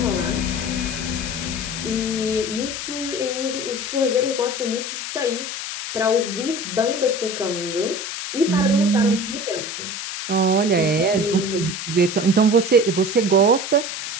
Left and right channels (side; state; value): left; noise; hiss, 6 dB below the sound